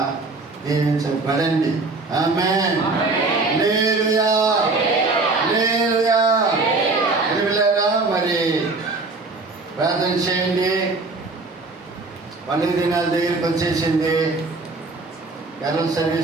దీవించబడండి. ఆమేన్. హల్లెలూయా, హల్లెలూయా. పిల్లరా మరి ప్రార్థన చేయండి. పండుగ దినాల దగ్గరికి వచ్చేసింది. కరెంట్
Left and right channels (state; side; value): quieter; left; 3.6 dB